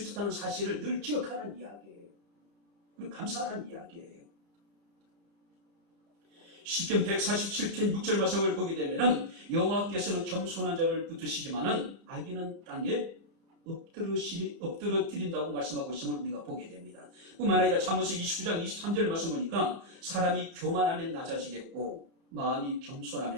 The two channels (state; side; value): late; left; 34 ms